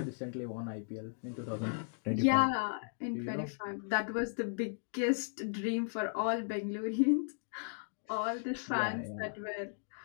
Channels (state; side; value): silent; right; digital silence